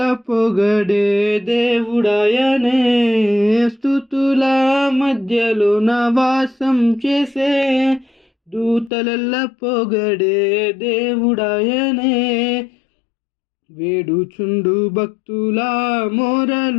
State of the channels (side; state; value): right; drops out; at 8.9 s